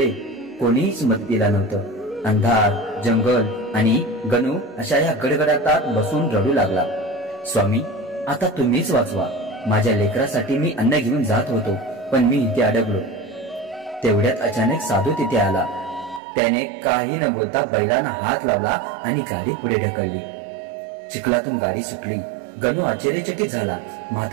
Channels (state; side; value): drops out; left; at 16.2 s